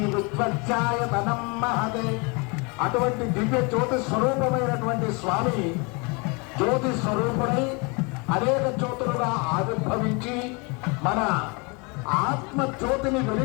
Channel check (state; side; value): quieter; right; 30.4 dB